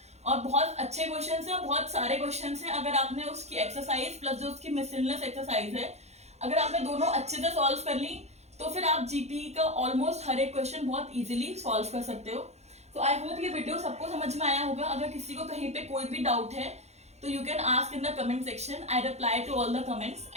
और बहुत अच्छे क्वेश्चन हैं और बहुत सारे क्वेश्चन हैं। अगर आपने उसकी एक्सरसाइज प्लस जो उसकी मिसलेनियस एक्सरसाइज है, अगर आपने दोनों अच्छे से सॉल्व कर ली तो फिर आप जीपी का ऑलमोस्ट हर एक क्वेश्चन बहुत इजीली सॉल्व कर सकते हो। तो आई होप ये वीडियो सबको समझ में आया होगा। अगर किसी को कहीं पे कोई भी डाउट है तो you can ask in the comment section. I reply to all the comments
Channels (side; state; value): left; late; 0.32 ms